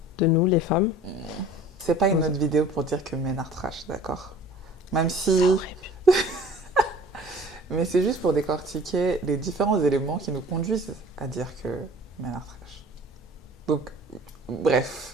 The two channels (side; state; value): both; normal; correlation 0.47